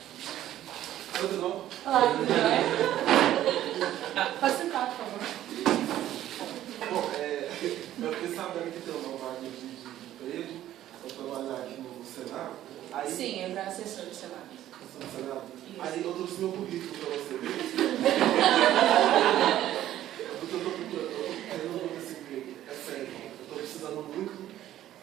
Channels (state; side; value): quieter; left; 12.8 dB